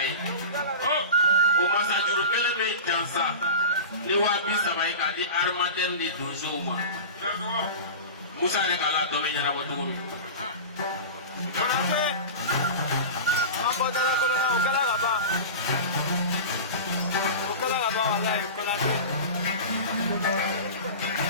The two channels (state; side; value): inverted; both; correlation -0.31